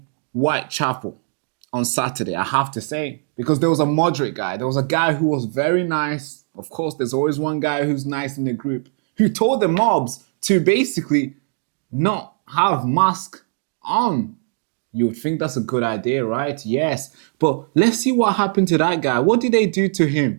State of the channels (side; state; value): left; silent; 60 dB below the other